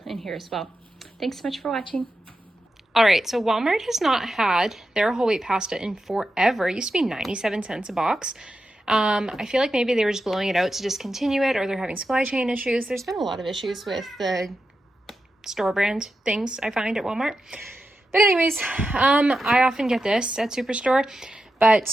in here as well. Thanks so much for watching. All right, so Walmart has not had their whole wheat pasta in forever. It used to be 97 cents a box. I feel like maybe they were just blowing it out to discontinue it, or they're having supply chain issues. There's been a lot of issues with the store brand things I find at Walmart. But anyways, I often get this at Superstore,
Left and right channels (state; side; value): normal; both; correlation 0.89